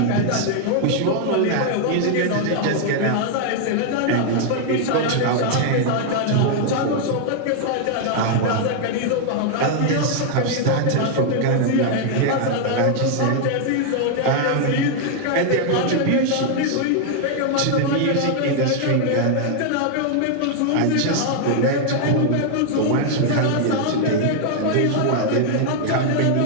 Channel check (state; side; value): different; both; correlation 0.00